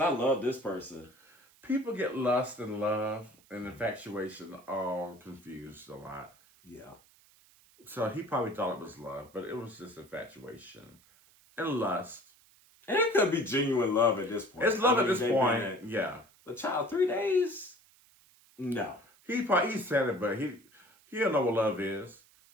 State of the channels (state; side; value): noise; right; hiss, 29 dB below the sound